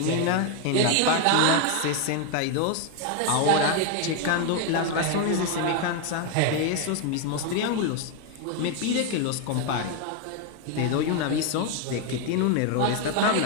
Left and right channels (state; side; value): different; both; correlation 0.01